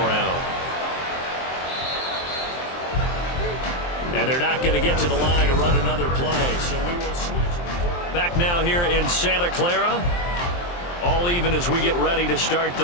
And they're not going to get to the line to run another play, so we will switch. Back now here in Santa Clara. All even as we get ready to start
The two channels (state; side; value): late; right; 23 ms